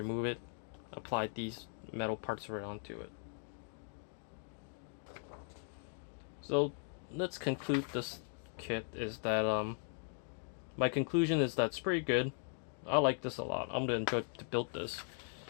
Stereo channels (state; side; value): silent; right; 52 dB below the other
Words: it, apply these metal parts right onto it. So let's conclude this kit is that my conclusion is that it's pretty good. I like this a lot. I'm gonna enjoy to build this.